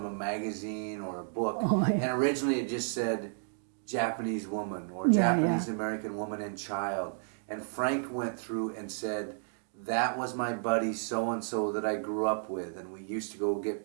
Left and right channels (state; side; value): silent; left; digital silence